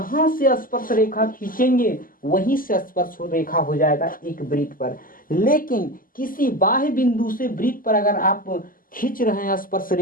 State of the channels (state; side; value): late; right; 0.41 ms